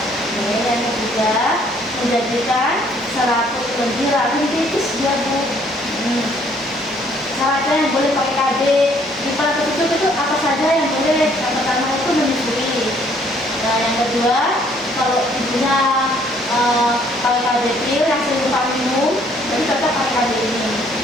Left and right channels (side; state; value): both; normal; correlation 0.63